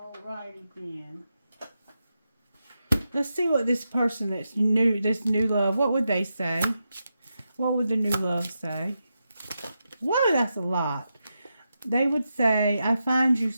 then. Let's see what this person that's new, this new love, what would they say? What would the new love say? Whoa, that's a lot. They would say, I find you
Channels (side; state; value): both; inverted; correlation -0.87